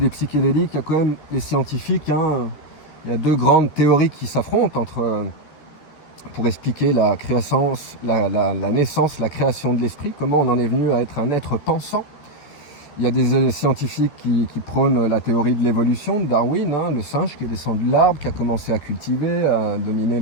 psychédéliques, il y a quand même les scientifiques. Hein, il y a deux grandes théories qui s'affrontent pour expliquer la naissance, la création de l'esprit, comment on en est venu à être un être pensant. Il y a des scientifiques qui prônent la théorie de l'évolution de Darwin, hein, le singe qui est descendu de l'arbre, qui a commencé à cultiver, à dominer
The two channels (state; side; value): late; right; 13 ms